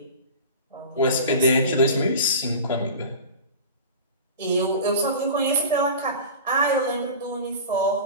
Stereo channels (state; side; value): inverted; both; correlation -0.34